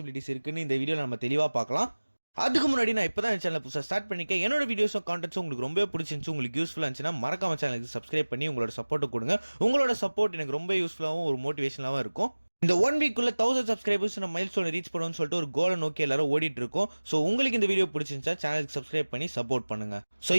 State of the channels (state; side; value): inverted; both; correlation -1.00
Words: இருக்குன்னு இந்த வீடியோவில் நம்ம தெளிவாக பார்க்கலாம். அதுக்கு முன்னாடி நான் இப்போ தான் சேனல் புதுசாக ஸ்டார்ட் பண்ணிக்கேன். என்னோட வீடியோஸும் கான்டென்ட்ஸும் உங்களுக்கு ரொம்ப பிடிச்சிருந்துச்சு, உங்களுக்கு யூஸ்ஃபுல்லாக இருந்துச்சுன்னா மறக்காம சேனலுக்கு சப்ஸ்கிரைப் பண்ணி உங்களோட சப்போர்ட்டை கொடுங்க. உங்களோட சப்போர்ட் எனக்கு ரொம்ப யூஸ்ஃபுல்லாகவும் ஒரு மோட்டிவேஷனாகவும் இருக்கும். இந்த 1 வீக்குள்ள 1000 சப்ஸ்கிரைபர்ஸ் நம்ம மைல்ஸ்டோன் ரீச் பண்ணணும்னு சொல்லிட்டு ஒரு கோலை நோக்கி எல்லாரும் ஓடிட்டு இருக்கோம். ஸோ உங்களுக்கு இந்த வீடியோ பிடிச்சிருந்துச்சா சேனலுக்கு சப்ஸ்கிரைப் பண்ணி சப்போர்ட் பண்ணுங்க. ஸோ